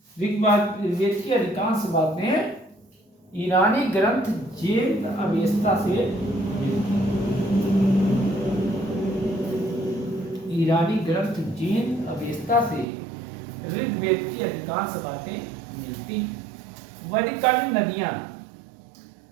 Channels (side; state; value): left; drops out; at 12.9 s